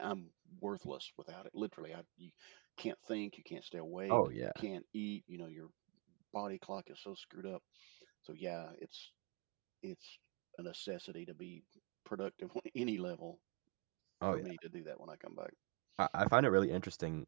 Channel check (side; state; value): left; quieter; 31.9 dB